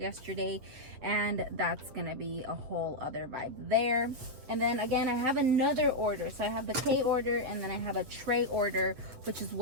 and that's gonna be a whole other vibe there. And then again, I have another order. So I have the K order, and then I have a tray order, which is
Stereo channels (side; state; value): left; late; 8.2 ms